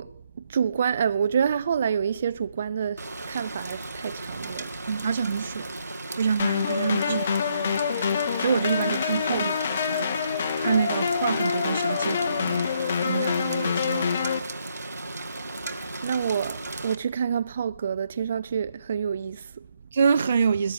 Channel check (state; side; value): inverted; both; correlation -0.73